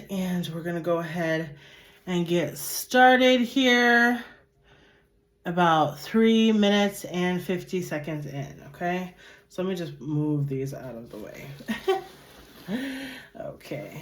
and we're gonna go ahead and get started here. About 3 minutes and 50 seconds in, okay? So let me just move these out of the way. Okay.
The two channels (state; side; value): identical; both; correlation 1.00